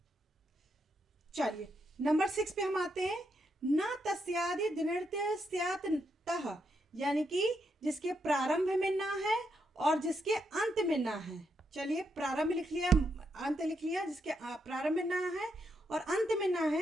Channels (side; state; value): both; normal; correlation 0.80